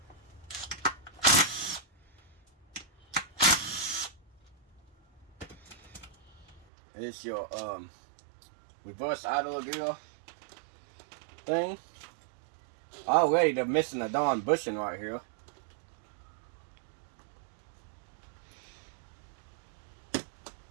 It's your reverse idler gear thing. Already they're missing a darn bushing right here.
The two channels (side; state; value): left; drops out; at 6.7 s